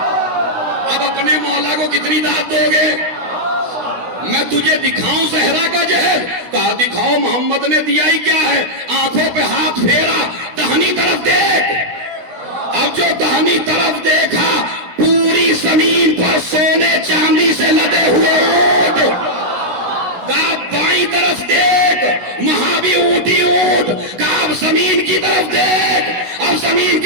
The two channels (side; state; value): left; late; 16 ms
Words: اب اپنے مولا کو کتنی داد دو گے؟ میں تجھے دکھاؤں زہرا کا جہیز؟ کہا دکھاؤ، محمد نے دیا ہی کیا ہے؟ آنکھوں پہ ہاتھ پھیرا، دہنی طرف دیکھ۔ اب جو دہنی طرف دیکھا پوری زمین پر سونے چاندی سے لدے ہوئے اونٹ۔ کہا بائیں طرف دیکھ، وہاں بھی اونٹی اونٹ۔ کہا اب زمین کی طرف دیکھ، اب زمین